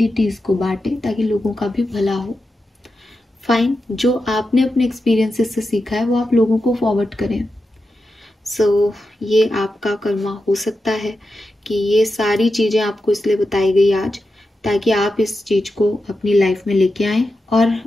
को बांटे ताकि लोगों का भी भला हो। फाइन, जो आपने अपने एक्सपीरियंसेस से सीखा है वो आप लोगों को फॉरवर्ड करें। सो ये आपका कर्मा हो सकता है कि ये सारी चीज़ें आपको इसलिए बताई गई आज ताकि आप इस चीज़ को अपनी लाइफ में लेके आएँ, और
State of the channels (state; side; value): normal; both; correlation 0.90